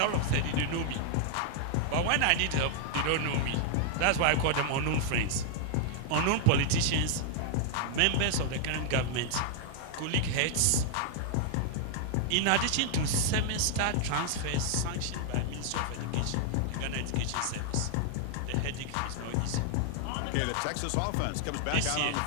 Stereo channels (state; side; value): different; both; correlation 0.00